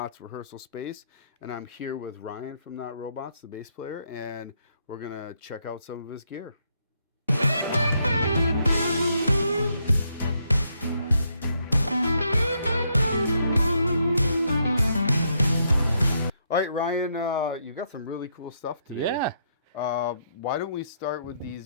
rehearsal space. And I'm here with Ryan from Not Robots, the bass player, and we're gonna check out some of his gear. All right, Ryan, you got some really cool stuff today. Yeah. Why don't we start with these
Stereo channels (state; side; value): inverted; both; correlation -0.76